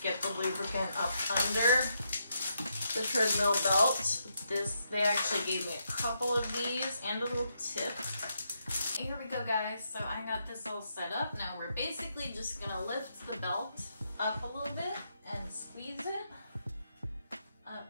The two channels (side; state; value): both; inverted; correlation -0.80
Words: get the lubricant up under the treadmill belt. They actually gave me a couple of these and a little tip. Here we go, guys. So I got this all set up. Now we're basically just gonna lift the belt up a little bit and squeeze it up